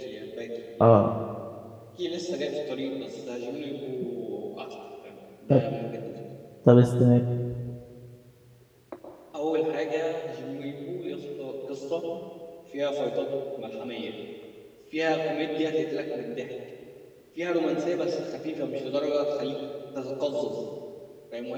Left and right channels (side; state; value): both; identical; correlation 1.00